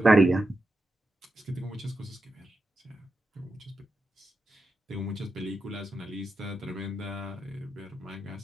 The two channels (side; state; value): both; normal; correlation 0.88